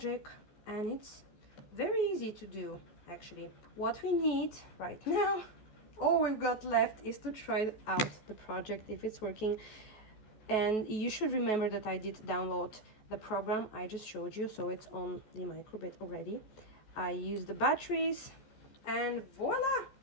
and it's very easy to do, actually. What we need right now, all we've got left, is to try out the project if it's working. And you should remember that I did download the program I just showed you, so it's on the microbit already. I used the batteries, and voila,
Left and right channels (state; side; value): late; right; 14 ms